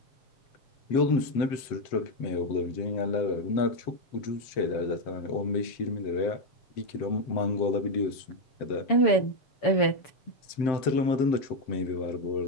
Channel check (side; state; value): right; late; 7.7 ms